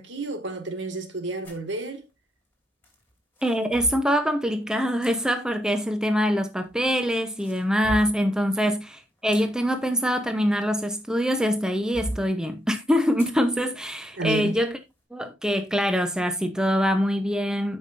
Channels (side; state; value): both; normal; correlation 0.80